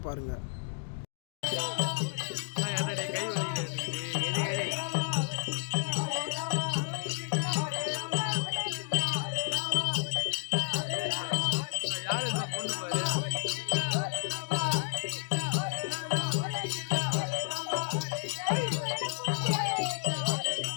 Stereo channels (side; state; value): right; silent; digital silence